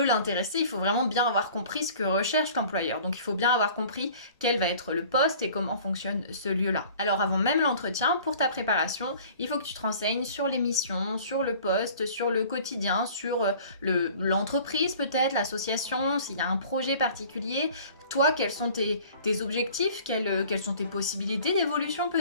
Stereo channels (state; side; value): inverted; both; correlation -0.48